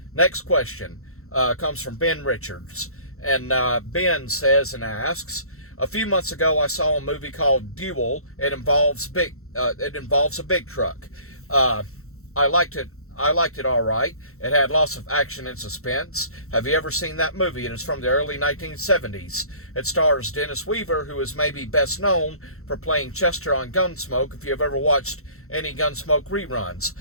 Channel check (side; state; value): right; late; 0.63 ms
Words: Next question comes from Ben Richards. And Ben says and asks, a few months ago I saw a movie called Duel. It involves a big truck. I liked it. I liked it all right. It had lots of action and suspense. Have you ever seen that movie? It is from the early 1970s. It stars Dennis Weaver, who is maybe best known for playing Chester on Gunsmoke, if you have ever watched any Gunsmoke reruns.